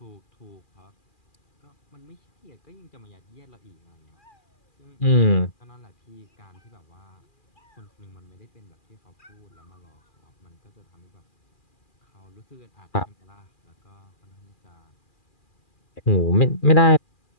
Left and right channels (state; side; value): late; right; 2.4 ms